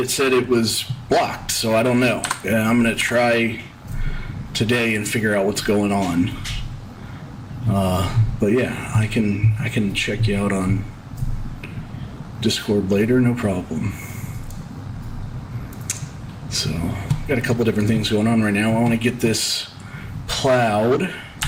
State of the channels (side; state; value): both; identical; correlation 1.00